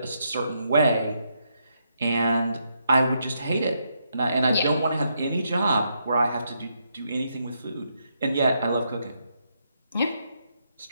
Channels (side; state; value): both; inverted; correlation -0.78